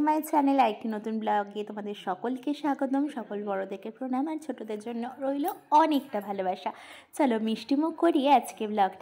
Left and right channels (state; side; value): identical; both; correlation 1.00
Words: my channel. আরেকটি নতুন ব্লগে তোমাদের সকলকে স্বাগতম। সকল বড়দেরকে প্রণাম আর ছোটোদের জন্য রইল অনেকটা ভালোবাসা। চলো মিষ্টিমুখ করিয়ে আজকে